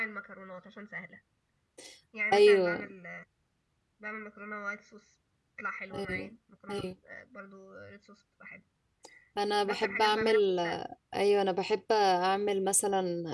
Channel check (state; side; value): identical; both; correlation 1.00